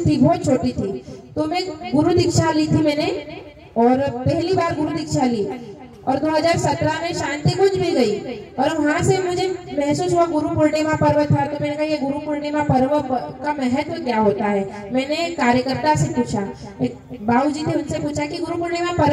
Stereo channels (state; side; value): identical; both; correlation 1.00